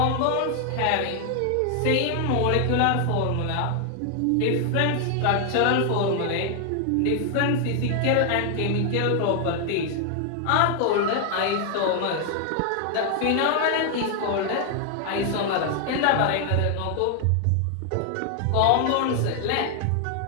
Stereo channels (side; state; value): both; different; correlation 0.00